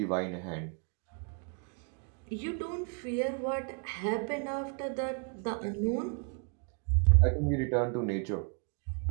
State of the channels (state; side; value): quieter; left; 38.6 dB